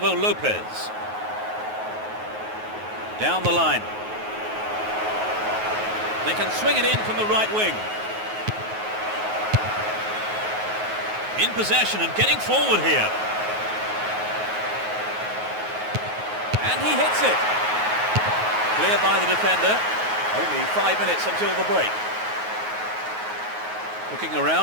Lopez. Down the line. They can swing it in from the right wing. In possession and getting forward here. And he hits it. Cleared by the defender. Only 5 minutes until the break. Looking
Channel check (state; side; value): late; left; 9.4 ms